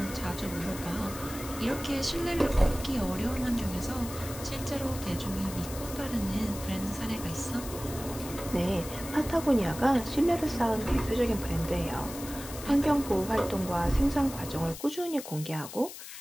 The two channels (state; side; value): noise; left; hiss, 12 dB below the sound